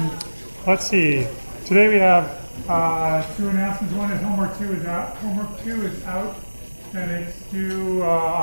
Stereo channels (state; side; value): inverted; both; correlation -1.00